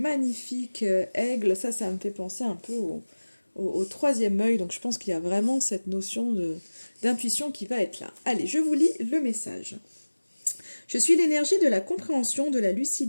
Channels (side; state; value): both; inverted; correlation -1.00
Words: aigle, ça me fait penser un peu au troisième œil, donc je pense qu'il y a vraiment cette notion d'intuition qui va être là. Allez, je vous lis le message. Je suis l'énergie de la compréhension, de la